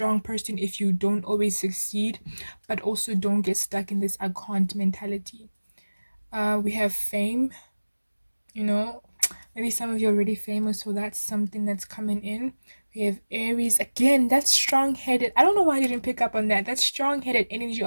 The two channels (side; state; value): both; inverted; correlation -1.00